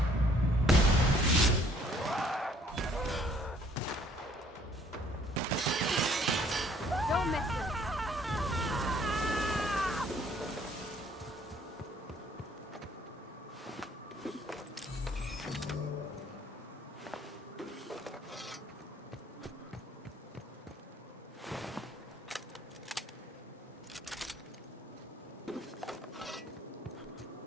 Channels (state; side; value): normal; both; correlation 0.60